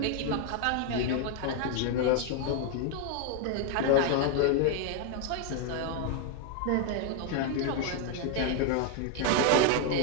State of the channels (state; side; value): different; both; correlation 0.01